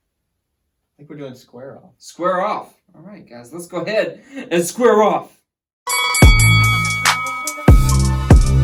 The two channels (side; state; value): both; identical; correlation 1.00